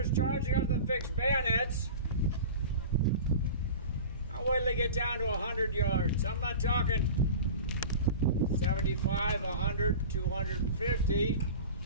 charging us with fixed bayonets, I'll wait till they get down to 100 yards. I'm not talking 75, 100, 250.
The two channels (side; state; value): both; inverted; correlation -0.34